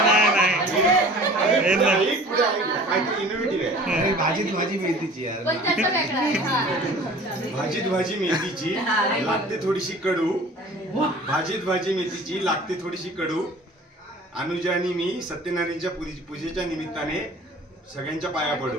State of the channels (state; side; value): normal; both; correlation 0.45